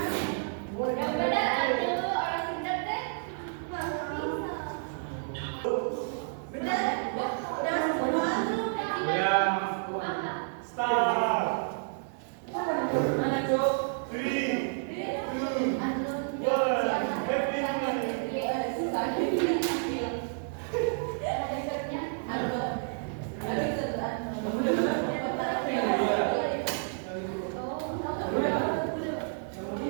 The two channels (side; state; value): left; silent; 58 dB below the other